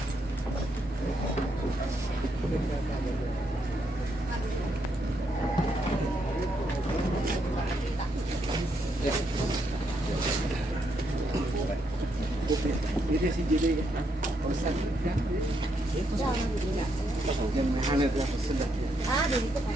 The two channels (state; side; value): normal; both; correlation 0.78